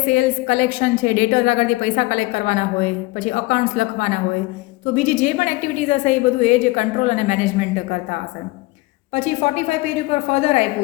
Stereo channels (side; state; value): right; quieter; 21.6 dB